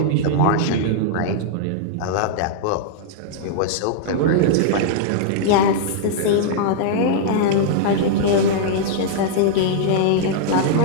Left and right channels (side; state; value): both; different; correlation -0.01